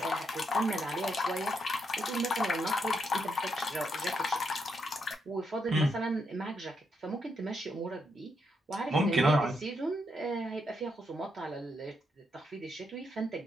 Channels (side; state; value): both; normal; correlation 0.79